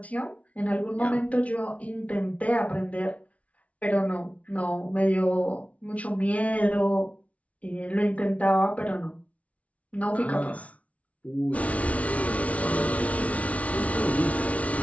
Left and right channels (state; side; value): late; right; 0.066 ms